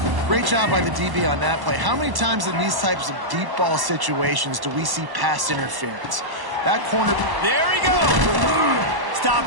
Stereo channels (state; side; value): late; left; 1.1 ms